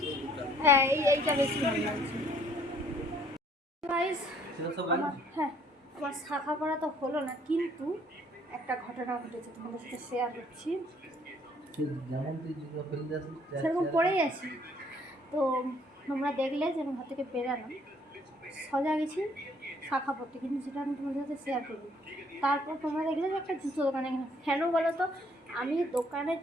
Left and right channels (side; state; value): both; normal; correlation 0.62